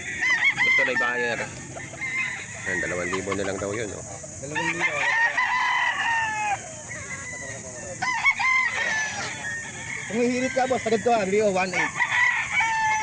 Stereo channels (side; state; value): both; identical; correlation 1.00